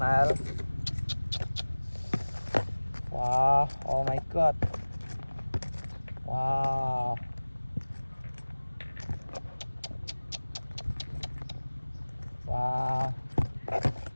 Wow, oh my god. Wow. Wow.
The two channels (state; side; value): inverted; both; correlation -1.00